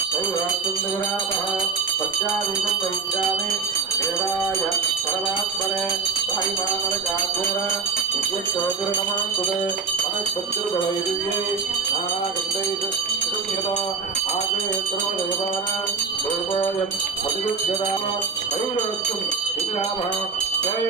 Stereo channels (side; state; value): left; quieter; 4.9 dB